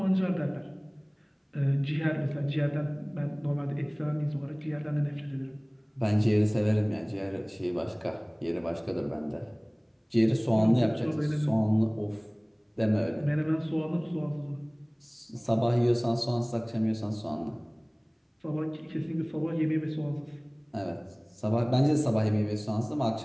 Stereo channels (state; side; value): identical; both; correlation 1.00